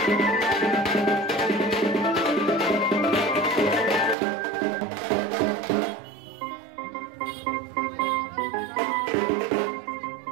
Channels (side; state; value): left; drops out; at 4.2 s